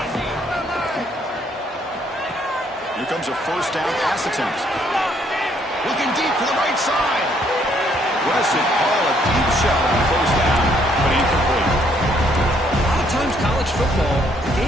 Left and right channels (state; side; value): normal; both; correlation 0.68